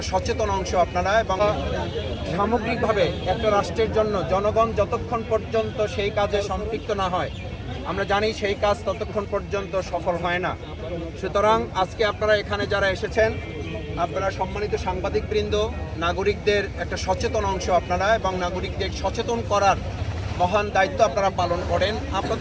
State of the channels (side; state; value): both; identical; correlation 1.00